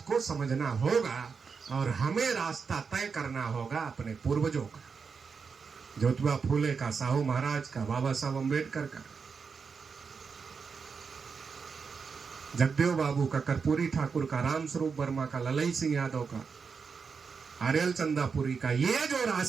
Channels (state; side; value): quieter; left; 5.5 dB